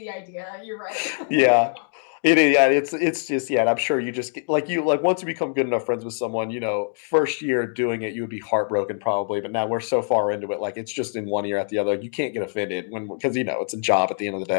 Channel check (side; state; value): right; silent; digital silence